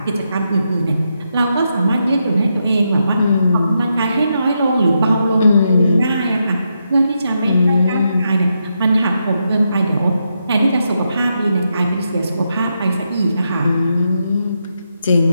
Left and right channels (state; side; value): inverted; both; correlation -0.83